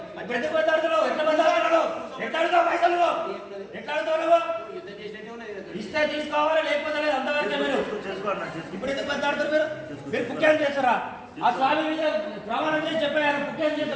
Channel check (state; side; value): identical; both; correlation 1.00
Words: బద్దలాడుతున్నావు ఎట్లా బద్దలాడుతున్నావు ఎట్లా అడుగుతావు పైసలు ఎట్లా అడుగుతావు నువ్వు ఇస్తే తీసుకోవాలి లేకపోతే లేదు అంతవరకే మీరు ఇప్పుడు ఎందుకు బద్దలాడుతారు మీరు పుట్టాన్ని చేస్తారా ఆ స్వామి మీద ప్రమాణం చేసి చెప్పారు పుట్టాన్ని